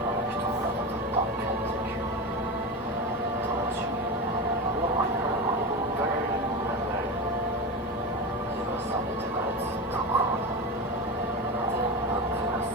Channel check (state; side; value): normal; both; correlation 0.22